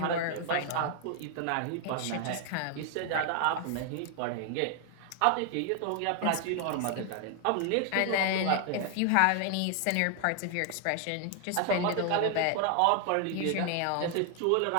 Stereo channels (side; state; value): both; different; correlation 0.00